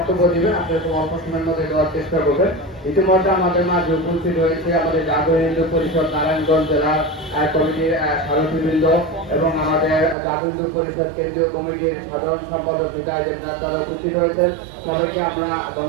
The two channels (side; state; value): left; drops out; at 10.2 s